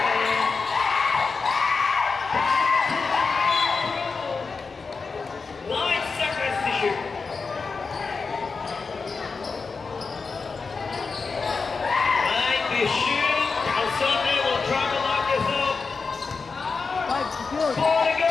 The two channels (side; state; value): right; quieter; 4.7 dB